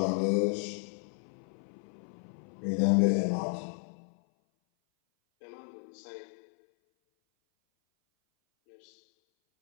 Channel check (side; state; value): right; silent; 56 dB below the other